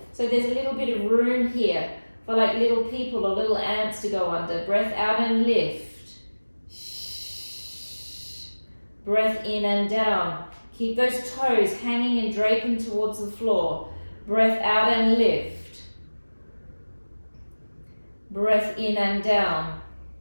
So there's a little bit of room here for like little people or little ants to go under. Breath out and lift. Breath in and down. Keep those toes hanging and draping towards the floor. Breath out and lift. Breath in and down.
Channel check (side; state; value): both; inverted; correlation -1.00